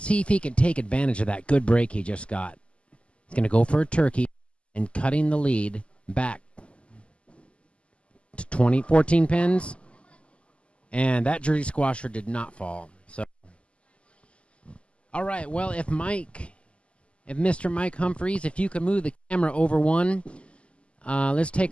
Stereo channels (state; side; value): late; right; 0.055 ms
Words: see if he can take advantage of that good break he just got. He's going to go for a turkey and cutting the lead back to 14 pins. And that Jersey squasher did not fall. So, all right, well, if Mr. Mike Humphreys, if you could move the camera over one, let's